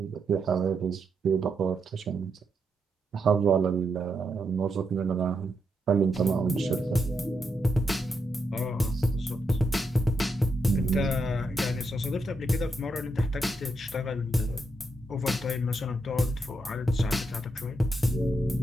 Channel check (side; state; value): both; normal; correlation 0.82